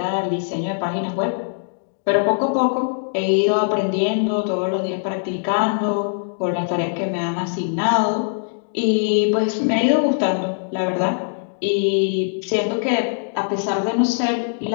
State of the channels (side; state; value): right; silent; digital silence